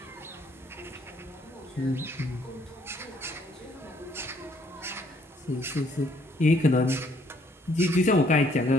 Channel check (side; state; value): both; normal; correlation 0.65